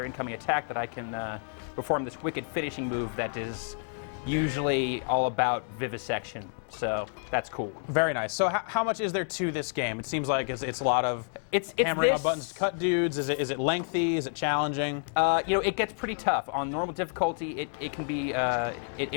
incoming attack that I can perform this wicked finishing move that is usually all about vivisection. So that's cool. Very nice. So how much is there to this game? It seems like it's a lot of hammering on buttons to cut dudes. Is it lengthy? Is it challenging? It gets pretty tough. On normal difficulty, it can be,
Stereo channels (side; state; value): right; silent; 58 dB below the other